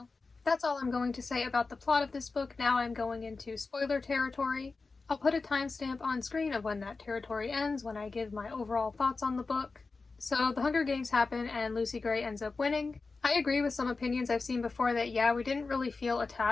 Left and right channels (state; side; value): quieter; right; 4.0 dB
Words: That's all I'm going to say about the plot of this book. Now I'm going into spoiler territory. I'll put a timestamp on screen of when that territory ends when I give my overall thoughts on the book. So the Hunger Games happen and Lucy Gray ends up winning. I agree with some opinions I've seen before that, yeah, we didn't really feel